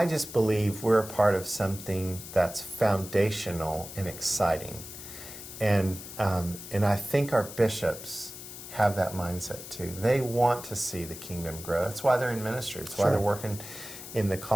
just believe we're a part of something that's foundational and exciting. And I think our bishops have that mindset too. They want to see the kingdom grow. That's why they're in ministry. That's why they're working in the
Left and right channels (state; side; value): noise; left; hiss, 12 dB below the sound